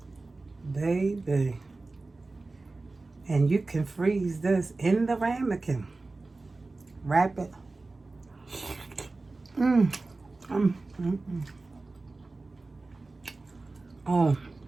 Baby. And you can freeze this in the ramekin. Wrap it. Oh,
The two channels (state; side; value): quieter; left; 3.4 dB